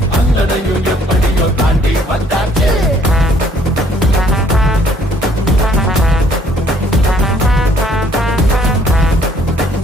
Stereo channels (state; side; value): normal; both; correlation 0.62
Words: அத்தனையும் எப்படியோ தாண்டி வந்தாச்சு.